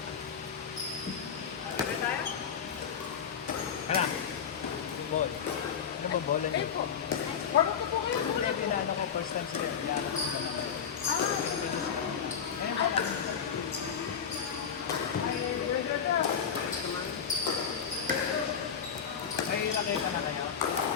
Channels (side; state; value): right; quieter; 7.3 dB